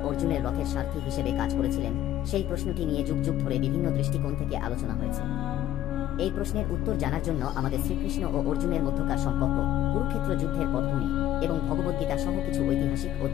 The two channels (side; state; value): right; quieter; 12.6 dB